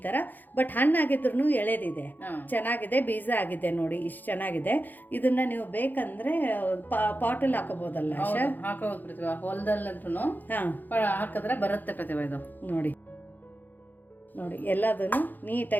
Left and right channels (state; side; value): late; right; 0.086 ms